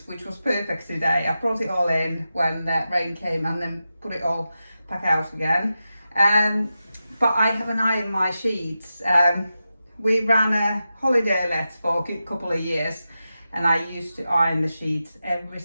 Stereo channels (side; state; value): both; inverted; correlation -0.91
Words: which was perfect today. I brought it all in when the rain came and then put it all back out again. But I haven't ironed my sheets. We ran a holiday let for a couple of years and I used to iron the sheets every